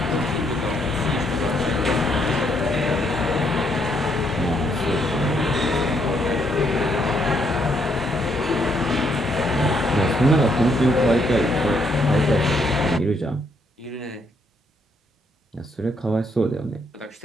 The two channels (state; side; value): normal; both; correlation 0.73